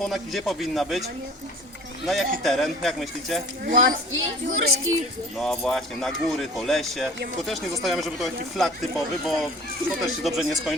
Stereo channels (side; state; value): both; normal; correlation 0.45